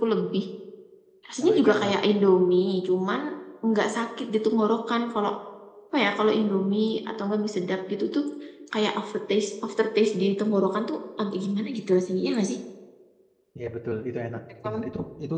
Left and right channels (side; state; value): both; identical; correlation 1.00